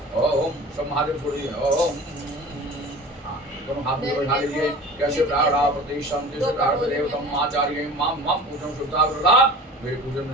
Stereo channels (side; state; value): both; normal; correlation 0.39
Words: ओम सब महादेव छोड़ दिए। ओम दोनों हाथ में बैठा लीजिए। कैसे प्राणा प्रदीप संति देवतम आचार्य मां मां पूजन सुधाग्रा। मेरे पूजन